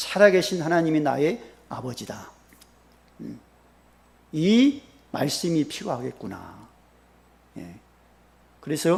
하나님이 나의 아버지다. 이 말씀이 필요하겠구나.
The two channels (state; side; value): identical; both; correlation 1.00